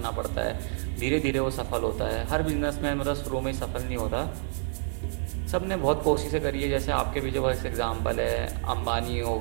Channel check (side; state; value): left; silent; 59 dB below the other